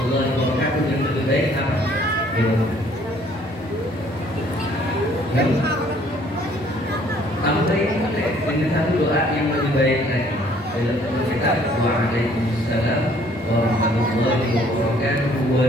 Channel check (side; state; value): right; noise; hum, 27 dB below the sound